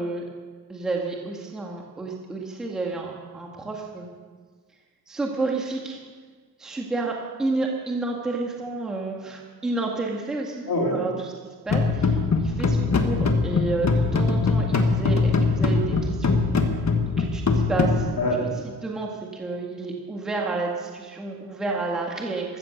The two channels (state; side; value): normal; both; correlation 0.55